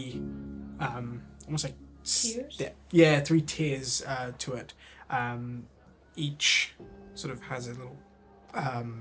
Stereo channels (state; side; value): identical; both; correlation 1.00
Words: almost like Tiers? yeah, 3 tiers to it. Each sort of has a little,